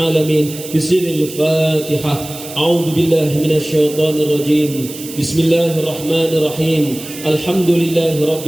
بسر الفاتحة أعوذ بالله من الشيطان الرجيم بسم الله الرحمن الرحيم الحمد لله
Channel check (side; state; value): right; noise; hiss, 13 dB below the sound